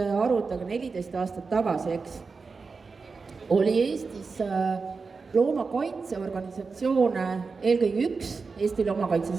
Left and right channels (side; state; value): left; quieter; 4.6 dB